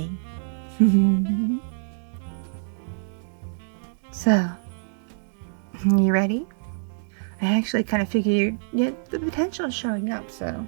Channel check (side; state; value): left; silent; digital silence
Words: So, you ready? I actually kind of figured the potential is showing up, so